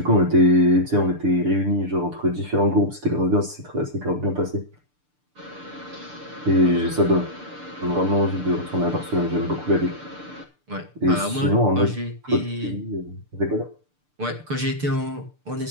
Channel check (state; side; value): late; left; 6.7 ms